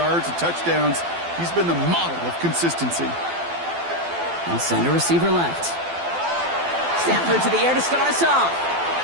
and touchdowns. He's been the model of consistency. And center receiver left. Stafford to the air to start us off.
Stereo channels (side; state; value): left; late; 12 ms